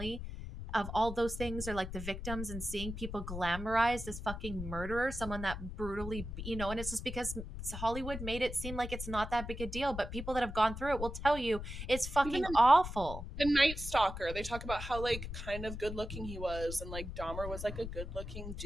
of all those things or like the victims and seeing people glamorize this fucking murderer, someone that brutally, and it's just because Hollywood made it seem like it's not that big a deal, but people that have gone through it will tell you it's even fucking awful. the Night Stalker, they talk about how like kind of good looking he was, and like Dahmer was like a good looking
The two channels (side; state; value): left; noise; rumble, 8 dB below the sound